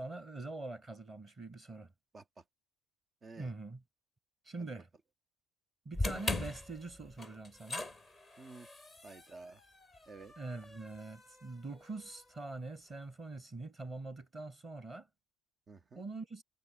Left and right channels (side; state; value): both; normal; correlation 0.83